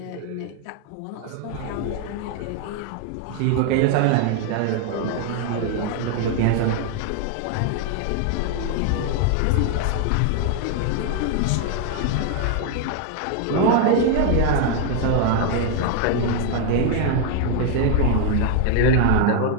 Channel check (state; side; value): different; both; correlation 0.00